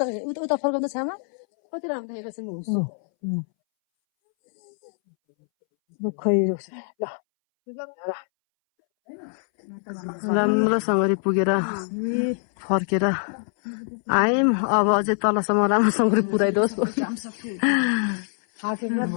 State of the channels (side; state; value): right; silent; 63 dB below the other